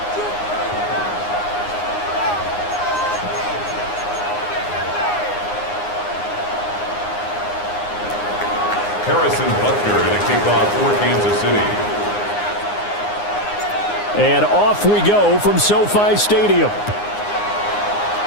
Harrison Butker to kick off for Kansas City. And off we go from SoFi Stadium.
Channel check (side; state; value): right; late; 9.7 ms